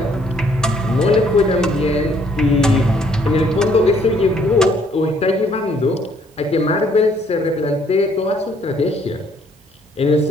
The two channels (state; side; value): normal; both; correlation 0.65